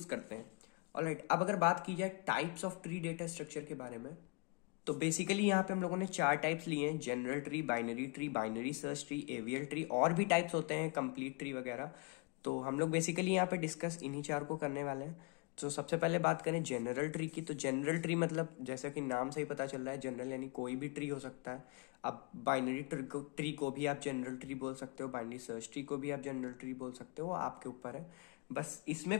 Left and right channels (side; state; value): right; quieter; 30.2 dB